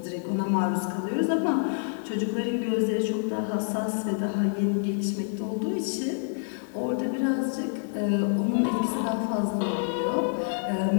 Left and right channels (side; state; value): right; silent; digital silence